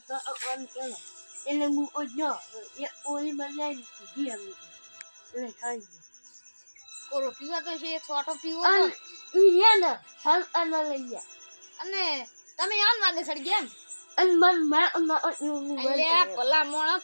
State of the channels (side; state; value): both; inverted; correlation -1.00